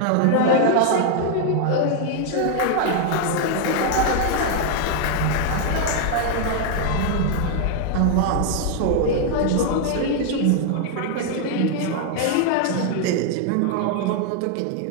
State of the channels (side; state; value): both; different; correlation 0.00